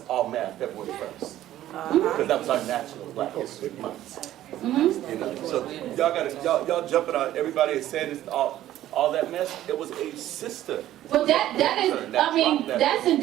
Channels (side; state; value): left; quieter; 13.3 dB